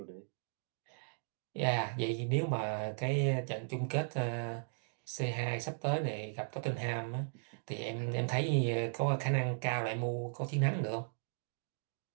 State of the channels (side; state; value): left; silent; digital silence